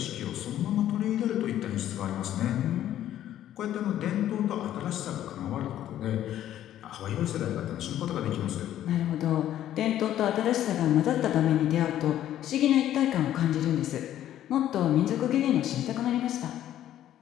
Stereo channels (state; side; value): quieter; right; 12.0 dB